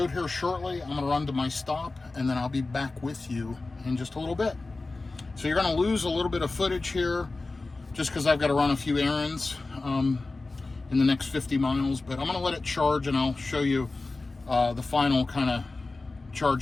here shortly. I'm gonna run to my stop, and then I'll be back with you in just a little bit. So you're gonna lose a little bit of footage here just because I've got to run a few errands in the next 50 miles, but I'm gonna let it charge, and I'll show you the final kind of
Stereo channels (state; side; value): quieter; right; 3.4 dB